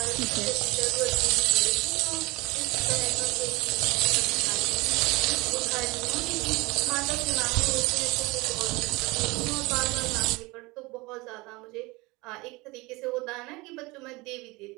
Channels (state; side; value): quieter; left; 23.6 dB